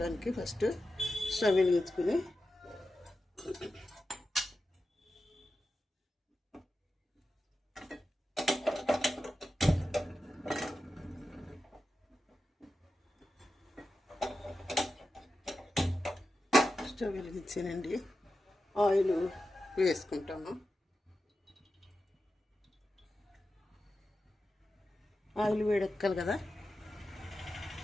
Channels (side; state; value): both; normal; correlation 0.91